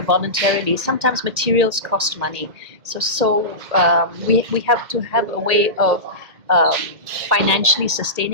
voluntarily. Sometimes materials cost money, so we have to have a way of financially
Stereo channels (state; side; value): late; left; 1.8 ms